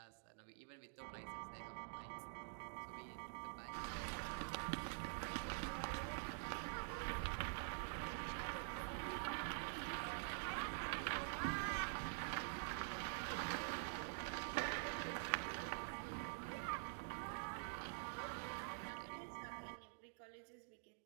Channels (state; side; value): silent; left; digital silence